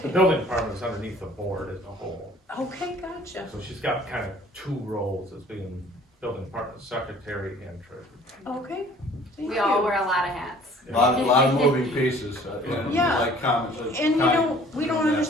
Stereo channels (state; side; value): normal; both; correlation 0.53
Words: The building department is underneath the board as a whole, Okay, gotcha. so she's got kind of 2 roles as being building department secretary and treasurer. Okay, thank We you. all wear a lot of hats. A lot of moving pieces, and Yeah. like comments. And you know, we don't